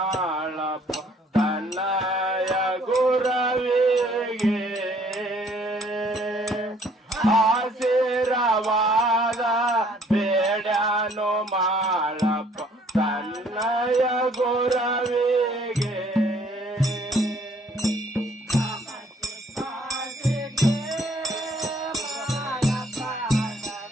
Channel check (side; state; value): both; normal; correlation 0.61